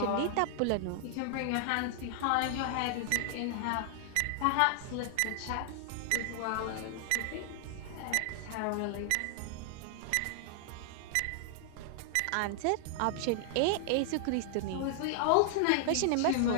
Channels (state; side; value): different; both; correlation -0.01